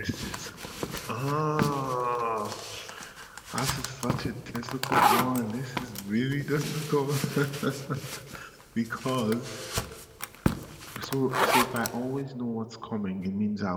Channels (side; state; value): both; identical; correlation 1.00